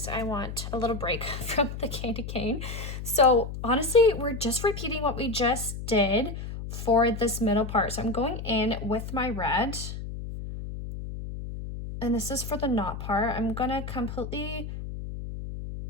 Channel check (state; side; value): noise; left; hum, 7 dB below the sound